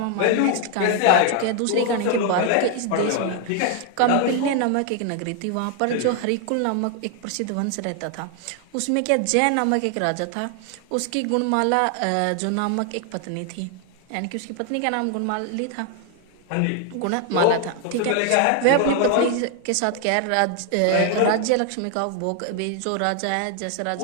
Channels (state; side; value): different; both; correlation 0.00